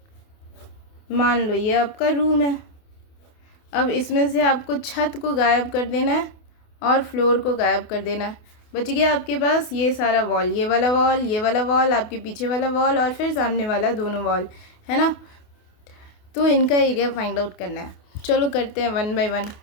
मान लो ये आपका रूम है। अब इसमें से आपको छत को गायब कर देना है और फ्लोर को गायब कर देना है। बच गया आपके पास ये सारा वॉल, ये वाला वॉल, ये वाला वॉल, आपके पीछे वाला वॉल और फिर सामने वाला, दोनों वॉल, है ना। तो इनका एरिया फाइंड आउट करना है। चलो करते हैं 1 बाय 1।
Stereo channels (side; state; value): right; late; 28 ms